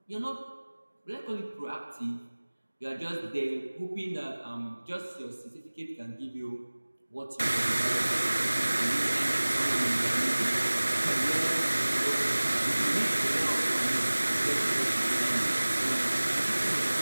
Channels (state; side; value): inverted; both; correlation -1.00